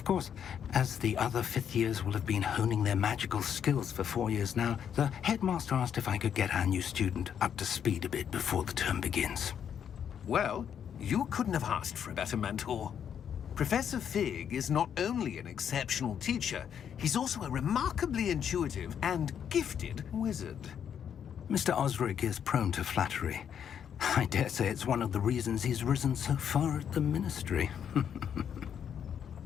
course, as the other 5th years will have been honing their magical skills for 4 years now, the headmaster asked if I could get our new student up to speed a bit before the term begins. Well, you couldn't have asked for a better mentor. Professor Fig is not only an exceptional teacher, he's also a remarkably intuitive and gifted wizard. Mr. Osric is prone to flattery. I dare say it's one of the reasons he's risen so far at the Ministry.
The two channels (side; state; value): right; quieter; 8.4 dB